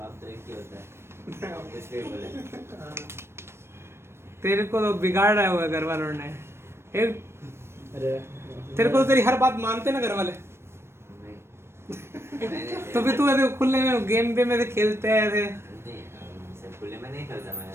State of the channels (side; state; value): left; late; 0.12 ms